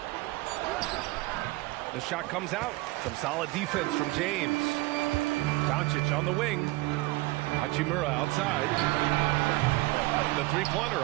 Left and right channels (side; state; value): left; quieter; 21.1 dB